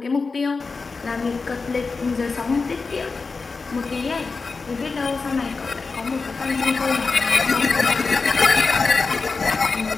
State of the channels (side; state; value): right; quieter; 4.3 dB